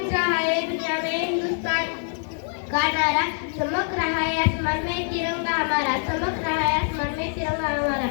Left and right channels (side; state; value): right; silent; 55 dB below the other